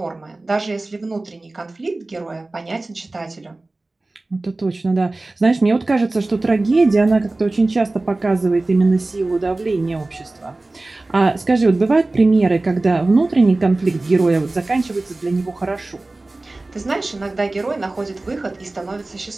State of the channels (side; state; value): left; quieter; 3.0 dB